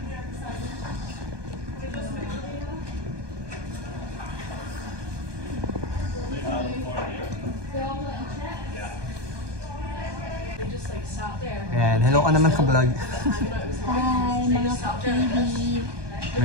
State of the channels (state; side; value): late; left; 1.2 ms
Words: Ayan, hello ka naman sa vlog. Hi mga ka-KB.